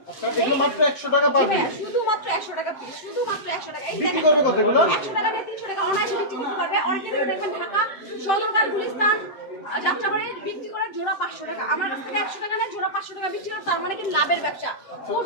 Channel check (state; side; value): late; right; 7.7 ms